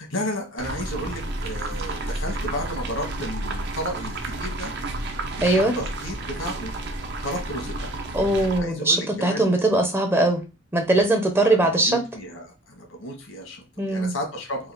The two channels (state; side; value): normal; both; correlation 0.51